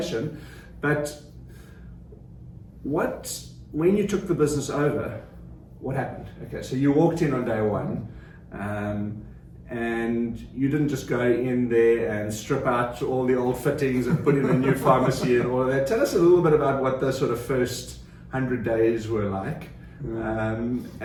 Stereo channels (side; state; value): both; identical; correlation 1.00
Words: But when you took the business over, what happened? Okay, so you walked in on day one, and you didn't just go in there and strip out all the old fittings and put in a new pharmacy and all of that. Tell us a little bit about what the sort of first 100 days were like.